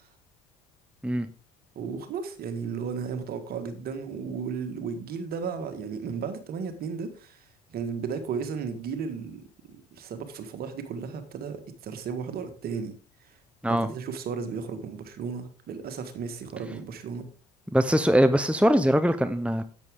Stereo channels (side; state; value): both; normal; correlation 0.80